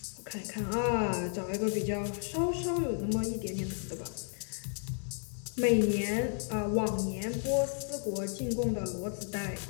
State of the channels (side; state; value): right; silent; 56 dB below the other